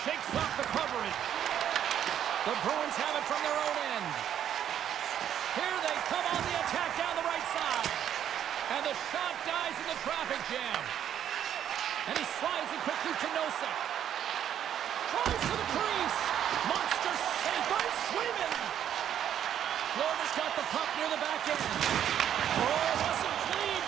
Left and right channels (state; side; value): quieter; left; 9.9 dB